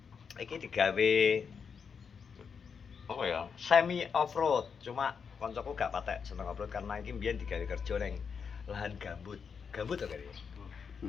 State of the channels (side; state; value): right; quieter; 6.2 dB